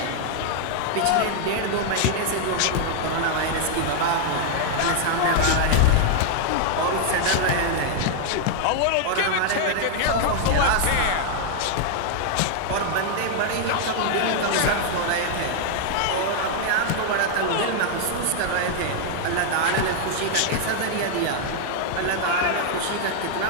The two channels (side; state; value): both; different; correlation 0.00